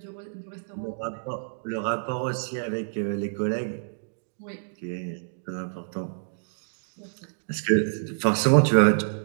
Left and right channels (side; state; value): left; silent; digital silence